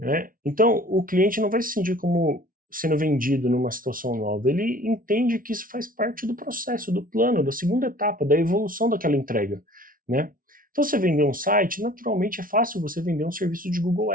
Então o cliente não vai se sentir como sendo vendido numa situação nova, ele entende que isso faz parte do processo, do plano, da segunda etapa, da evolução daquela entrega, né? Então você vender um site, naturalmente é fácil você vender um serviço de Google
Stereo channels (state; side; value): late; left; 0.40 ms